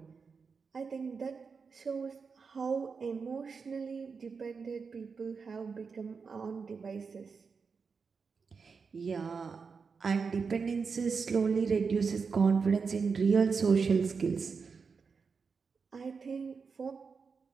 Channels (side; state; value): left; quieter; 5.3 dB